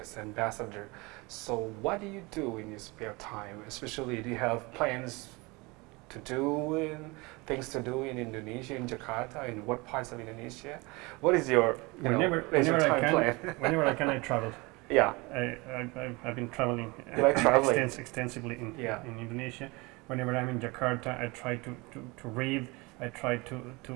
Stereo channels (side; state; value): left; quieter; 25.3 dB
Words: ambassador. So what do you do in your spare time? Especially, do you have plans to do and things to do in Indonesia, in Jakarta, in what parts of Indonesia? What is your whenever time plan? Whenever I can, I travel. Yeah. I've been traveling, You like traveling? extensively in Indonesia. Whenever I'm in Jakarta, I try to read. I try to